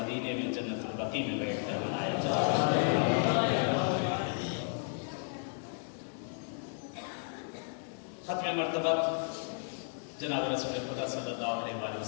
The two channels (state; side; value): silent; right; 55 dB below the other